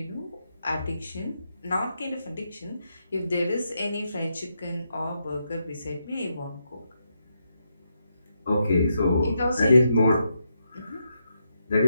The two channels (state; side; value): inverted; both; correlation -0.82